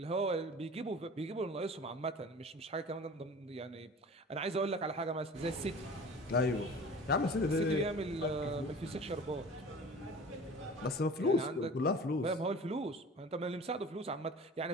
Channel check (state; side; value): normal; both; correlation 0.41